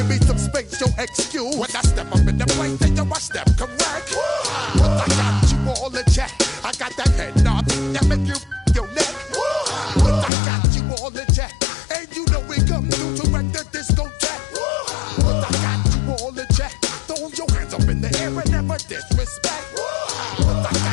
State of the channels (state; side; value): drops out; right; at 10.3 s